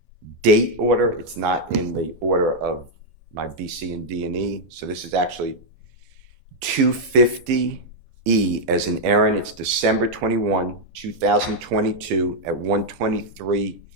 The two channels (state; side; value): late; left; 12 ms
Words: date order. It's not in the order of my B, C, and D, and E. So this is actually 250E as in Aaron. It's December 21, 2022 at 1:23